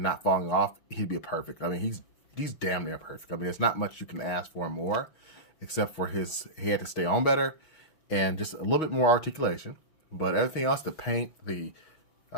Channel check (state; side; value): late; right; 6.2 ms